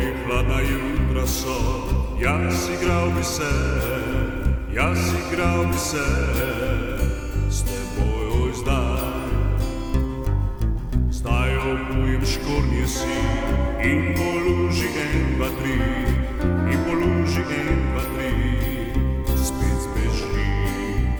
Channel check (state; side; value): identical; both; correlation 1.00